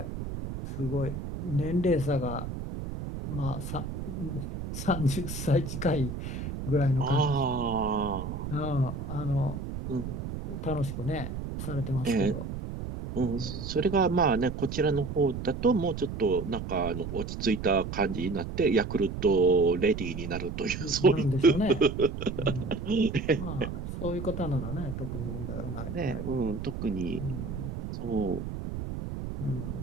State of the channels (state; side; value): noise; right; rumble, 6 dB below the sound